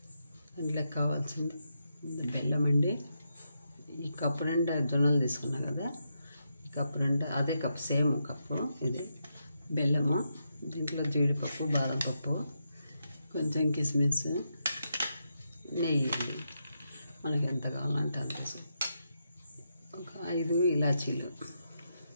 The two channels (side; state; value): both; inverted; correlation -0.83